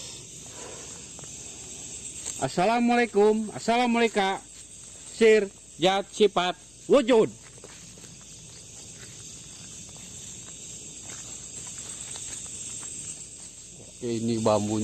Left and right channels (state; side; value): noise; left; hum, 25 dB below the sound